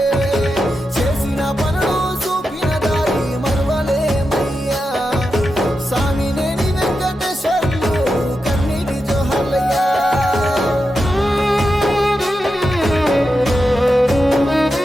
చేసిన పనులు చూపిన దారి మరువలేమయ్యా స్వామినేని వెంకటేశ్వర్లు కన్నీటి జోహార్లయ్యా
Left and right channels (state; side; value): normal; both; correlation 0.89